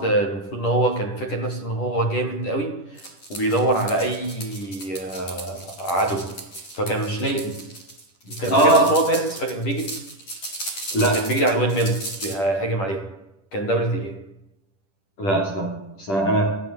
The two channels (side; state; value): right; late; 10 ms